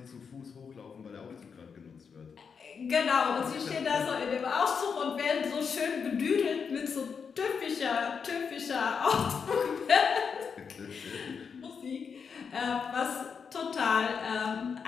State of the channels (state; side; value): quieter; right; 6.1 dB